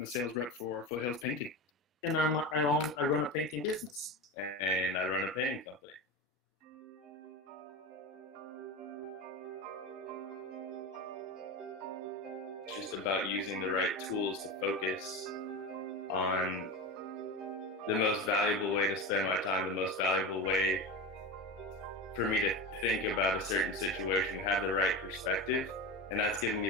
a sales rep for Foothills Painting. And I run a painting business. And I run a painting company. It's just about using the right tools to focus on the most valuable way to spend my time, the most valuable way for me to think about a certain situation, have the right perspective, and that's given me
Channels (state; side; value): normal; both; correlation 0.23